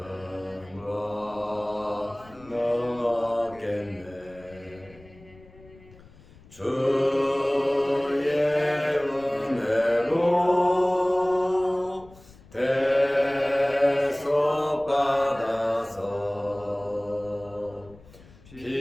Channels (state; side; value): noise; left; rumble, 24 dB below the sound